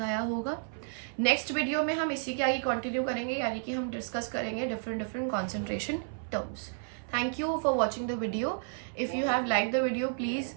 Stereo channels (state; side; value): silent; left; 57 dB below the other